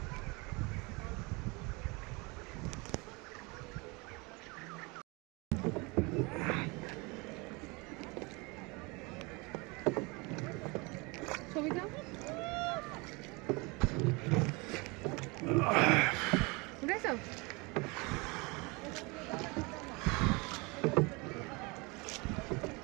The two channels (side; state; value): left; quieter; 27.2 dB